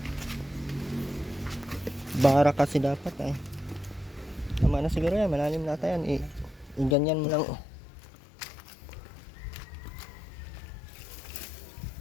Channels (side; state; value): right; drops out; at 7.0 s